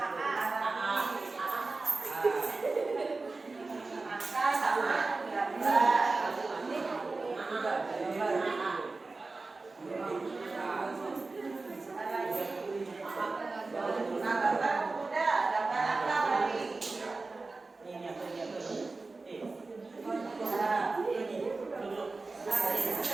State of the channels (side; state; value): left; quieter; 3.6 dB